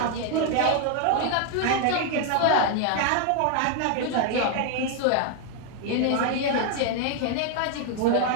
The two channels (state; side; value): different; both; correlation 0.00